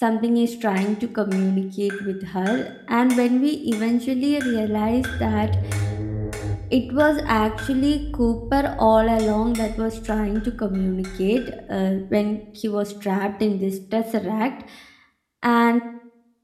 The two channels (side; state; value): both; identical; correlation 1.00